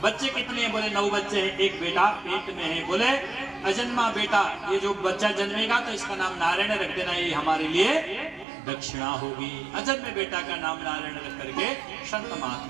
बच्चे कितने हैं? बोले 9 बच्चे हैं, एक बेटा पेट में है। बोले अजन्मा बेटा, ये जो बच्चा जन्मेगा तो इसका नाम नारायण रख देना, ये हमारे लिए दक्षिणा होगी। अजन्मे बेटा का नाम नारायण रख करके संत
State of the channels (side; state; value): left; drops out; at 8.5 s